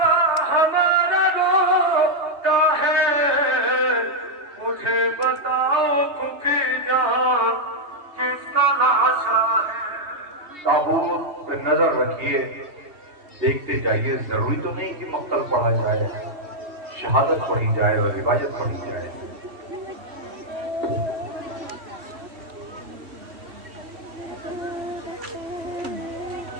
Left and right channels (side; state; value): left; late; 3.1 ms